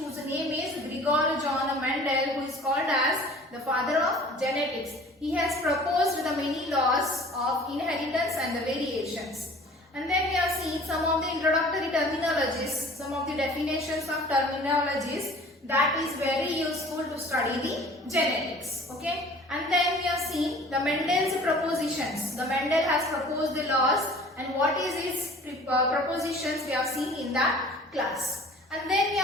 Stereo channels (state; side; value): normal; both; correlation 0.47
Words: name is Gregor John Mendel, who is called as the father of genetics. He has proposed the many laws of inheritance and the variations. And then we have seen some of the introductory terminologies, some of the definitions of terminologies that is very useful to study the genetics. Okay. And then we have seen the Mendel's propositions. The Mendel has proposed the laws and what is his propositions we have seen in that class. And then we